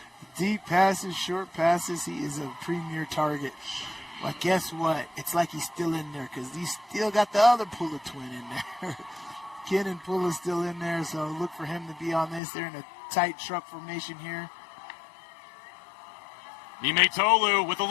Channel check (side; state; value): right; drops out; at 12.4 s